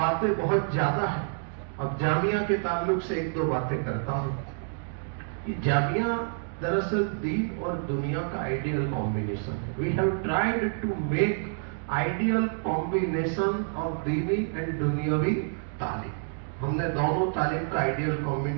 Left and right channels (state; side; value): silent; left; digital silence